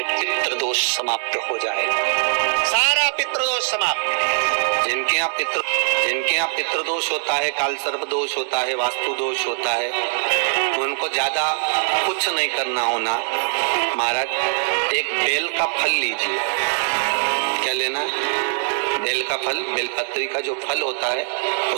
पितृदोष समाप्त हो जाएगा, सारा पितृदोष समाप्त। जिनके यहाँ पितृदोष होता है, काल सर्प दोष होता है, वास्तु दोष होता है, उनको ज्यादा कुछ नहीं करना होना। महाराज एक बेल का फल लीजिए। क्या लेना है? बेल का फल, बेलपत्री का जो फल होता है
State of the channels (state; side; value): silent; left; digital silence